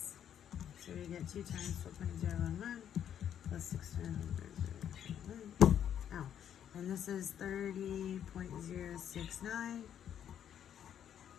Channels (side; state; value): right; quieter; 9.5 dB